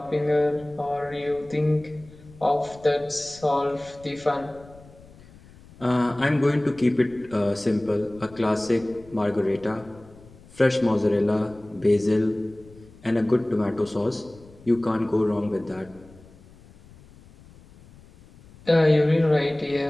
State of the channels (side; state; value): left; noise; rumble, 23 dB below the sound